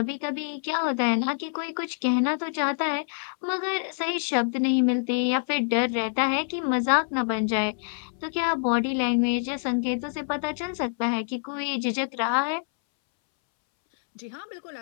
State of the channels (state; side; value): silent; right; 61 dB below the other